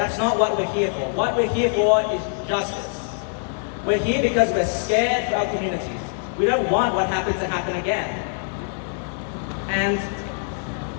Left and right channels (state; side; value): silent; right; 63 dB below the other